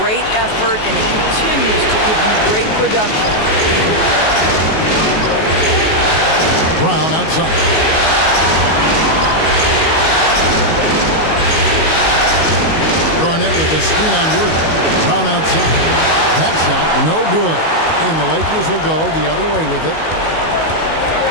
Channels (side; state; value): right; late; 19 ms